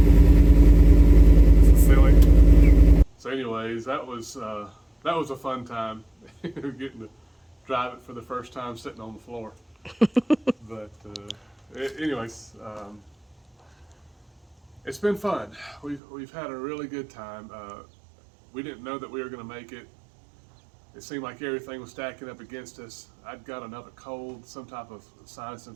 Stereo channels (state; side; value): drops out; left; at 16.0 s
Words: This is silly. So anyways, that was a fun time. Getting to drive it for the first time sitting on the floor. But anyways, it's been fun. We've had a really good time. We didn't know that we were going to make it. It seemed like everything was stacking up against us. I'd got another cold, some type of sinus